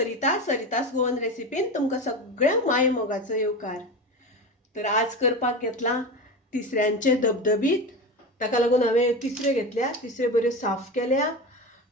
गोवन रेसिपीन तुमकां सगळ्या माय मोगाचो येवकार। तर आज करपाक घेतला तिसऱ्यांचे धबधबीत। ताका लागून हांवें तिसऱ्यो घेतल्या, तिसऱ्यो बऱ्यो साफ केल्या,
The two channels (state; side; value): normal; both; correlation 0.24